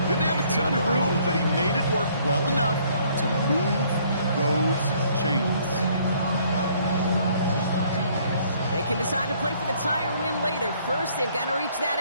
Didn't have a ton of room, but he made it work well enough to move those chains. They can decide to play for the tie or win later. First, they've got to reach that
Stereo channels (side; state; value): both; inverted; correlation -0.62